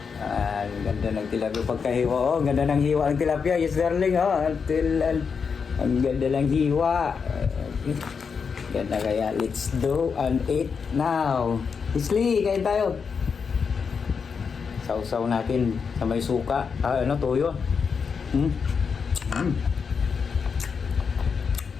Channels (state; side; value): quieter; right; 5.9 dB